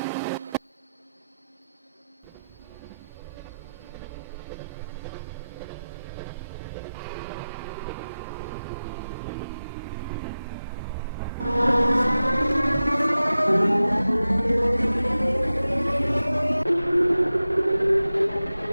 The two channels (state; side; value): inverted; both; correlation -0.94